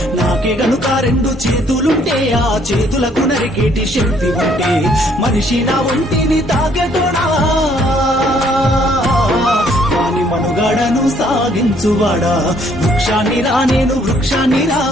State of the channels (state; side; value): normal; both; correlation 0.65